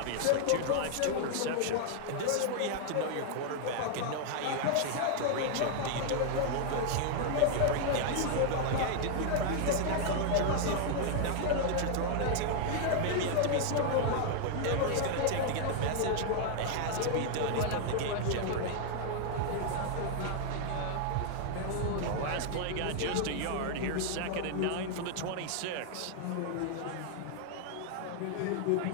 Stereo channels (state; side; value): different; both; correlation 0.00